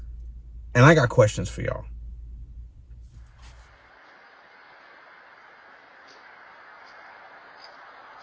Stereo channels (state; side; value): identical; both; correlation 1.00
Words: and I got questions for y'all.